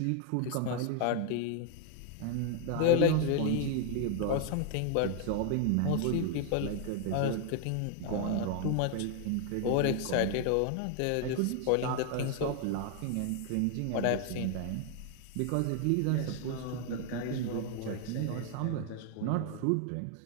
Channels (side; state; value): both; different; correlation 0.00